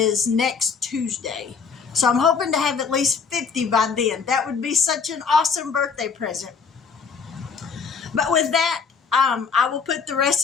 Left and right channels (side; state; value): right; quieter; 5.6 dB